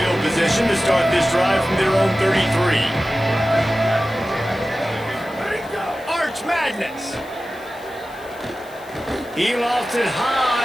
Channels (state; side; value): noise; left; hiss, 24 dB below the sound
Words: position to start this drive from their own 33. Madness. He lofts it